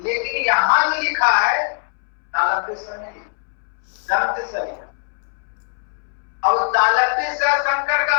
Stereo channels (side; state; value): right; silent; 64 dB below the other